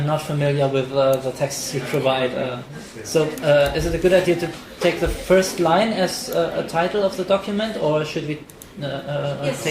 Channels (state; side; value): identical; both; correlation 1.00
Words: not familiar with the texts you provide. Is it a good idea to take the first line as a title of the document, or should we